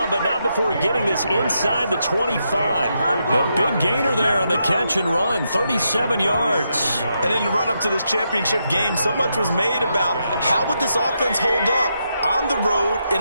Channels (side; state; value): both; inverted; correlation -0.82